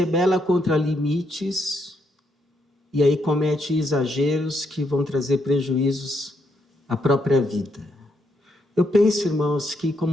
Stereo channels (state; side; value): normal; both; correlation 0.77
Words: contra limites, e aí comete exageros que vão trazer prejuízos à própria vida. Eu penso, irmãos, que